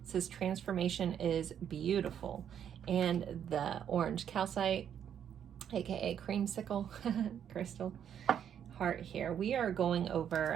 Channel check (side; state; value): left; quieter; 9.0 dB